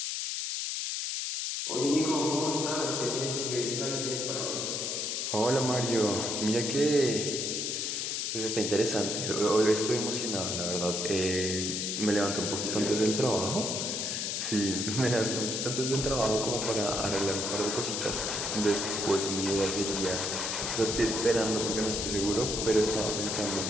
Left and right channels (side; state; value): left; noise; hiss, 1 dB below the sound